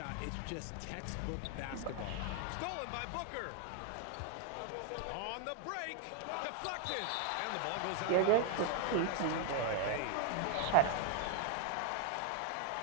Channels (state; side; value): different; both; correlation 0.00